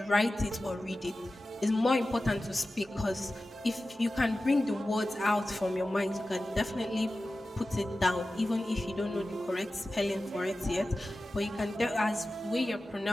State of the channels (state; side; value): normal; both; correlation 0.95